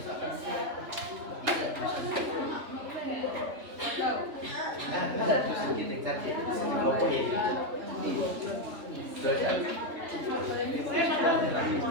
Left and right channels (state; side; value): late; left; 3.3 ms